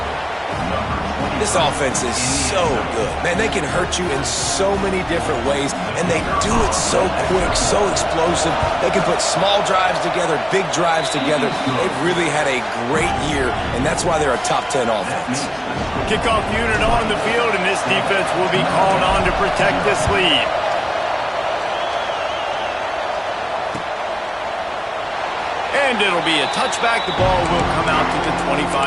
This offense is so good. Man, they can hurt you in so many different ways, and they do it so quick, so explosive. They can put small drives together, big drives together. They've really had a great year, and that's why they're a top 10 offense. Kickoff unit on the field, and this defense will be called on to protect this lead. And it'll be a touchback. The ball will come out to the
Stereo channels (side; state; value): both; identical; correlation 1.00